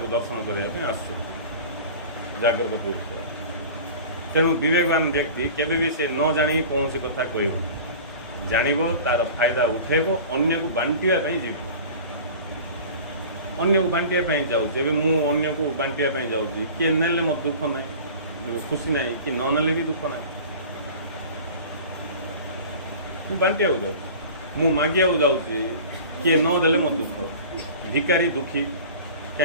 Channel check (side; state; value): both; inverted; correlation -0.39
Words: ଦର୍ଶନ କରିବା ପାଇଁ ଆସୁଛନ୍ତି ଜାଗ୍ରତ ପୁରୁଷ ତେଣୁ ବିବେକବାନ ବ୍ୟକ୍ତି କେବେ ବି ସେ ନ ଜାଣି କୌଣସି କଥା କହିବ ଜାଣିବ ତାର ଫାଇଦା ଉଠେଇବ ଅନ୍ୟକୁ ବାଣ୍ଟିବା ପାଇଁ ଯିବ ଅନ୍ୟକୁ ବାଣ୍ଟିବା ପାଇଁ ଯାଉଛି ଏବେ ମୁଁ ଅନ୍ୟକୁ ବାଣ୍ଟିବା ପାଇଁ ଯାଉଛି କିଏ ନେଲେ ମୋର ଦୁଃଖ ନାହିଁ ଖୁସି ନାହିଁ କି ନ ନେଲେ ବି ଦୁଃଖ ନାହିଁ ମୁଁ ବାଣ୍ଟିବାକୁ ଯାଉଛି ମୁଁ ମାଗିବାକୁ ଯାଉଛି କିଏ ନ ଦେଲେ ମୋ ଦୁଃଖ ଭିକାରୀ ଦୁଃଖୀ